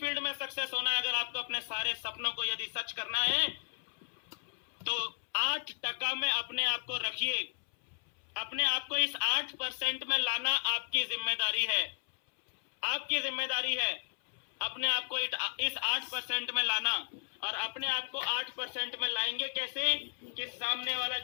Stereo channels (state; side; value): silent; right; 55 dB below the other